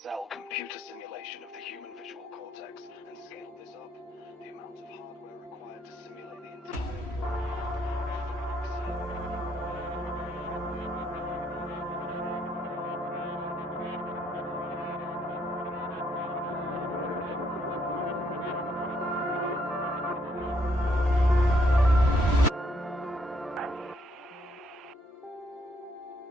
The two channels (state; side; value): normal; both; correlation 0.71